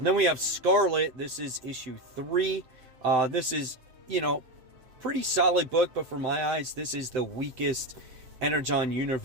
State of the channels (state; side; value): late; left; 7.8 ms